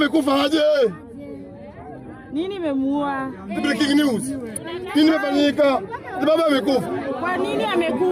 aje? Nini imemuua? Breaking news. Nini imefanyika? Baba amekufa. Kwa nini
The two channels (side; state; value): both; identical; correlation 1.00